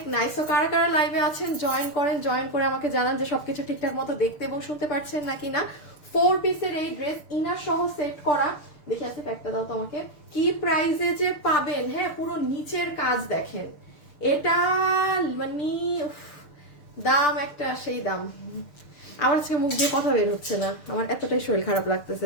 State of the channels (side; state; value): right; late; 6.6 ms